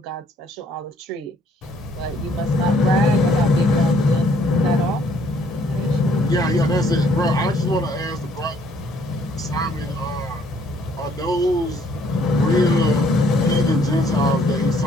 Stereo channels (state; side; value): normal; both; correlation 0.64